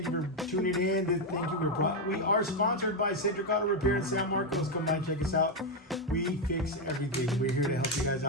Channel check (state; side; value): normal; both; correlation 0.05